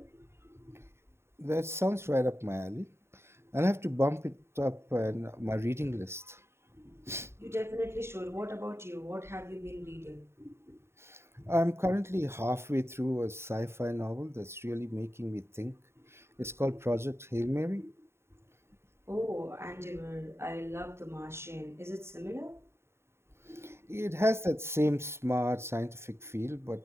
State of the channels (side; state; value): left; late; 0.12 ms